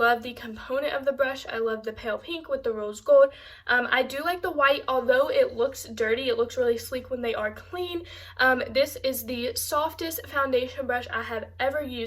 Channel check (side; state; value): both; identical; correlation 1.00